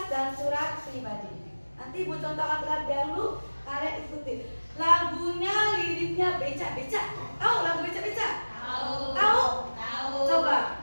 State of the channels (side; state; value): both; inverted; correlation -1.00